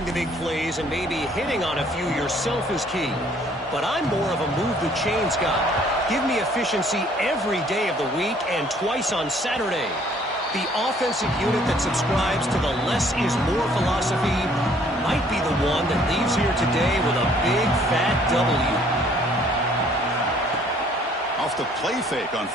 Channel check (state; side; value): normal; both; correlation 0.60